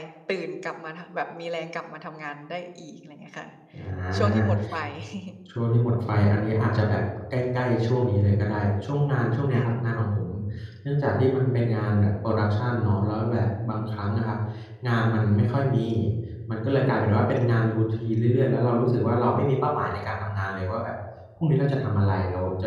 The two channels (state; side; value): identical; both; correlation 1.00